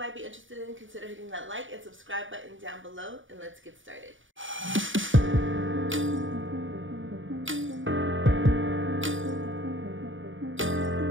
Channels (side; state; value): left; late; 0.57 ms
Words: be interested in, consider hitting that like and subscribe button down below, and let's get started.